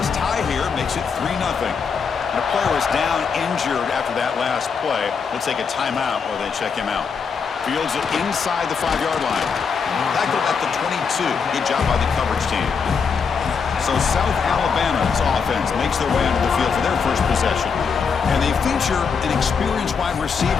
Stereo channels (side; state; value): right; quieter; 5.9 dB